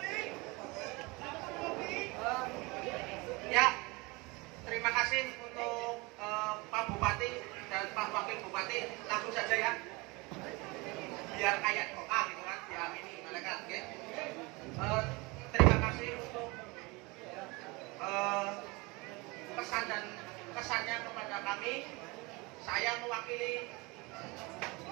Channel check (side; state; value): left; quieter; 25.4 dB